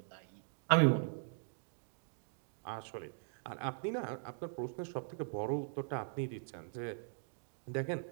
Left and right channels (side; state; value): left; silent; digital silence